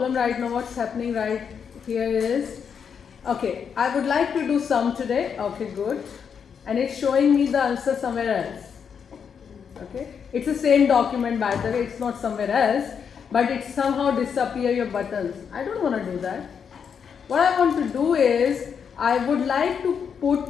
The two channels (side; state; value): right; quieter; 7.0 dB